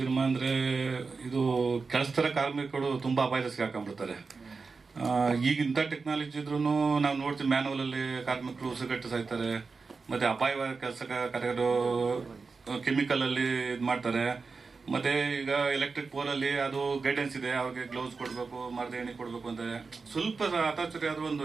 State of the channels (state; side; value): quieter; left; 4.5 dB